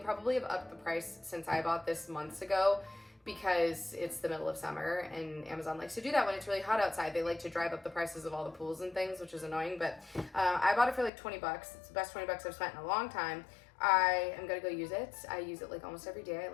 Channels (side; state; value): right; drops out; at 11.1 s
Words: have upped the price since I bought this months ago, because it's the middle of summer and Amazon likes to do that when it's really hot outside. They like to drive up the prices of all the pools and things, which is annoying, but I bought it for like 20 bucks. It's the best 20 bucks I've spent in a long time. I am gonna go use it. I use it like almost every day. I